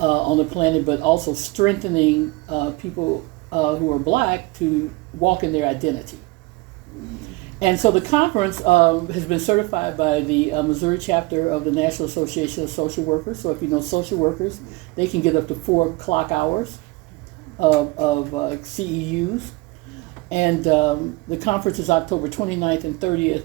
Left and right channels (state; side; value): quieter; left; 23.0 dB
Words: the planet, but also strengthening people who are Black to walk in their identity. And so the conference has been certified by the Missouri chapter of the National Association of Social Workers. So if you know social workers, they can get up to 4 clock hours of CEUs. And the conference is October 29th and 30th